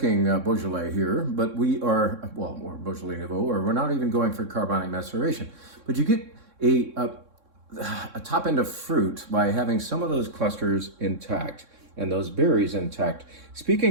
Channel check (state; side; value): late; left; 3.6 ms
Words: Beaujolais here, but we are, well, or Beaujolais Nouveau, or we're not even going for carbonic maceration. But you get a top end of fruit by having some of those clusters intact and those berries intact.